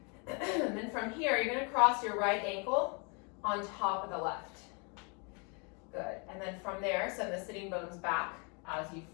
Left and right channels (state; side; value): quieter; right; 34.5 dB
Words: And then from here, you're gonna cross your right ankle on top of the left. Good, and then from there, send the sitting bones back as you